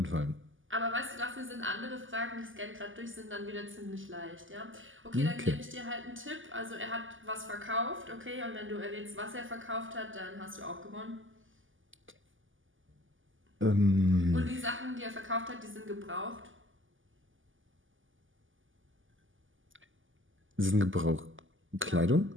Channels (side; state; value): left; late; 0.58 ms